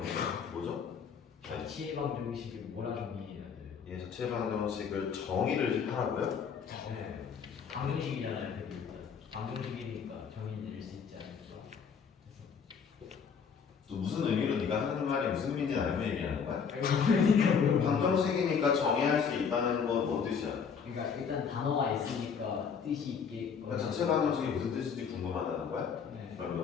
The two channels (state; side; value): quieter; right; 6.5 dB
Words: 뭐죠? 자취방 정식을 뭐라 정의해야 돼요? 예, 자체 방정식을 정의를 하라고요? 네 방정식이잖아요. 일단 방정식이니까 정의 내릴 수 있지 않을까. 또 무슨 의미로 네가 하는 말이 무슨 의미인지 알고 얘기하는 거야? 그러니까 방정식이니까 정의할 수 있다는 건 뭔 뜻이야? 그러니까 일단 단어가 있으니까 뜻이 있게. 그러니까 자체 방정식이 무슨 뜻인지 궁금하다는 거야? 네.